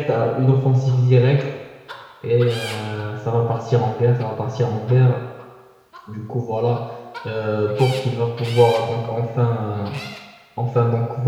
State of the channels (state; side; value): identical; both; correlation 1.00